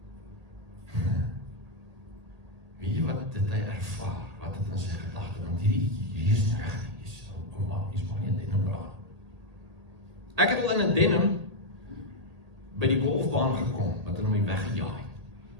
weet jy wat het hy ervaar, wat het in sy gedagte, want hierdie is nie reg, is maar nie 'n denim dra. Ek het al in 'n denim by die golfbaan gekom, wat hulle my weggejaai.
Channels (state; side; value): late; left; 1.8 ms